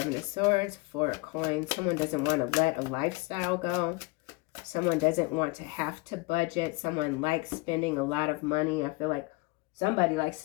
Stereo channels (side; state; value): right; quieter; 24.6 dB